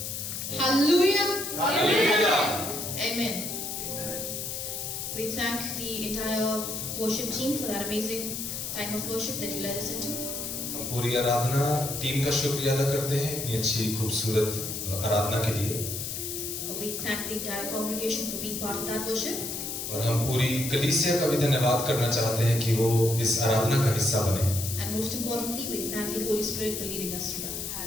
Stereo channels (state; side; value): noise; left; hiss, 5 dB below the sound